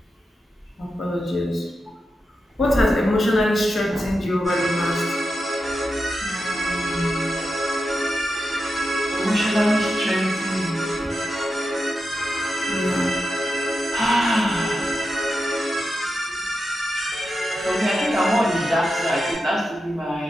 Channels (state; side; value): normal; both; correlation 0.89